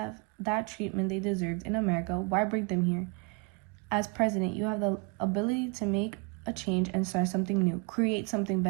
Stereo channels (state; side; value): quieter; left; 27.7 dB